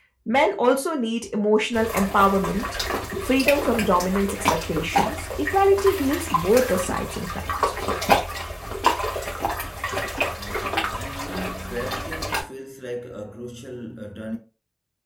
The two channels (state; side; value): identical; both; correlation 1.00